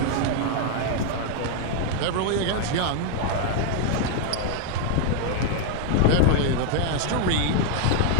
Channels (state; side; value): different; both; correlation 0.00